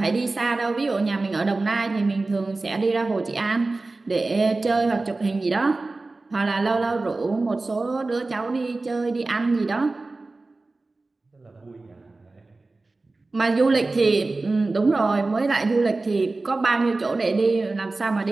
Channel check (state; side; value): quieter; left; 3.4 dB